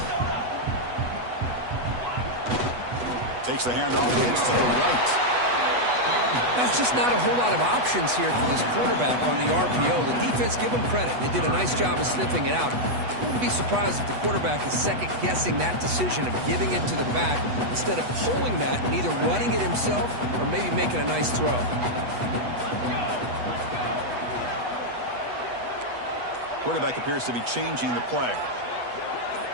Takes the handoff. It's to the right. That's just not a whole lot of options here for this quarterback on the RPO. The defense, give them credit. They did a nice job of sniffing it out. I wouldn't be surprised if the quarterback is second-guessing that decision of giving it to the back instead of pulling that and either running it himself or maybe making a nice throw. Quarterback appears to be changing the play.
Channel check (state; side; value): late; left; 8.2 ms